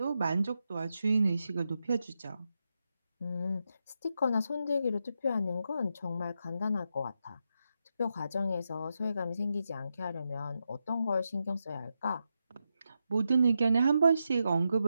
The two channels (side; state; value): both; inverted; correlation -0.86